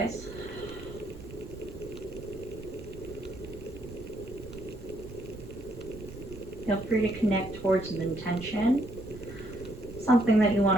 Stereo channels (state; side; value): noise; right; rumble, 14 dB below the sound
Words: Feel free to connect towards an intention, something that you